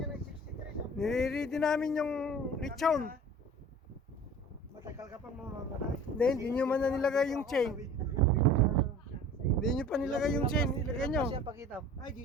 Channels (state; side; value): normal; both; correlation 0.43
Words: ng 63. nire-ready namin yung litson. Matagal ka pang mamamatay. Hindi nyo man na nilagay yung chain. Hindi nyo pa nilagay yung chain, ilagay nyo. Ay,